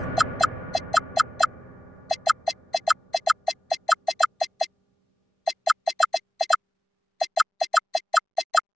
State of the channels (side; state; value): both; normal; correlation 0.97